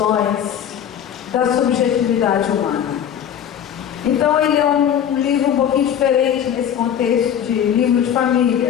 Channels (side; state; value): right; quieter; 9.3 dB